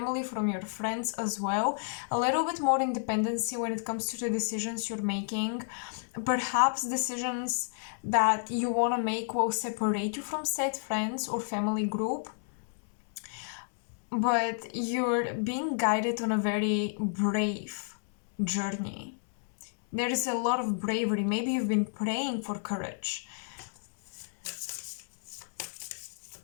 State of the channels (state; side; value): silent; right; digital silence